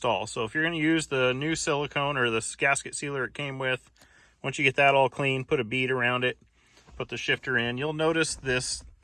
So if you're going to use the new silicone or the gasket sealer it came with, once you get that all clean, put a bead around it, put the shifter in. You'll notice this,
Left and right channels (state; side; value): identical; both; correlation 1.00